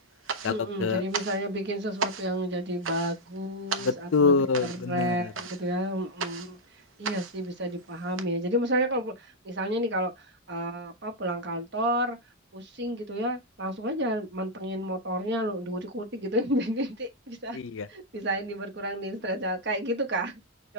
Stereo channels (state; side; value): normal; both; correlation -0.03